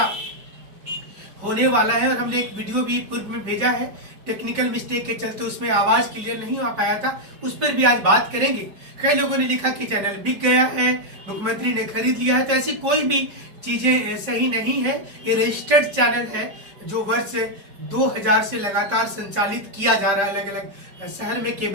होने वाला है, और हमने एक वीडियो भी पूर्व में भेजा है, टेक्निकल मिस्टेक के चलते उसमें आवाज क्लियर नहीं हो पाया था, उस पर भी आज बात करेंगे। कई लोगों ने लिखा कि चैनल बिक गया है, मुख्यमंत्री ने खरीद लिया है, तो ऐसी कोई भी चीजें सही नहीं है। ये रजिस्टर्ड चैनल है जो वर्ष 2000 से लगातार संचालित किया जा रहा है अलग अलग शहर में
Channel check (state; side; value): late; left; 5.1 ms